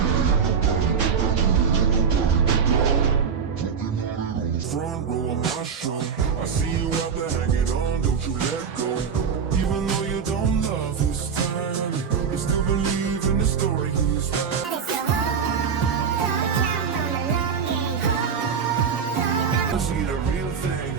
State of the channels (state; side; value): quieter; left; 6.5 dB